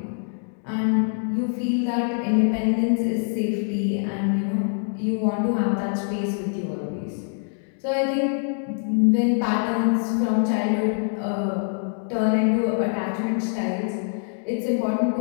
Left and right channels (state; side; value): silent; right; 62 dB below the other